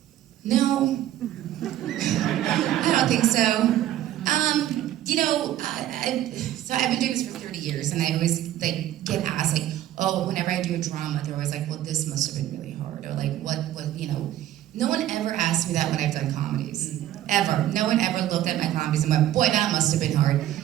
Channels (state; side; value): quieter; left; 12.8 dB